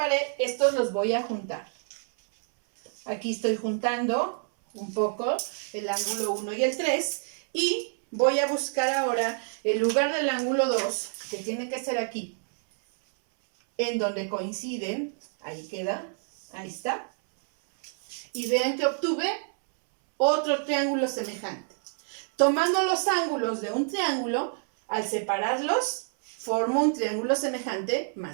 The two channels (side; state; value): left; silent; 60 dB below the other